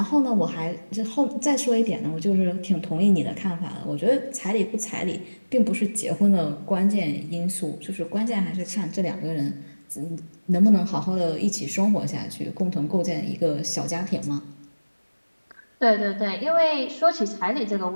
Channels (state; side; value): inverted; both; correlation -1.00